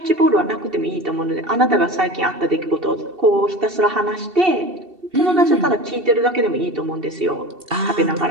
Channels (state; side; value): late; left; 2.7 ms